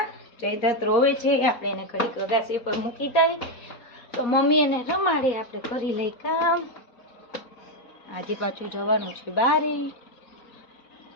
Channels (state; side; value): late; right; 4.1 ms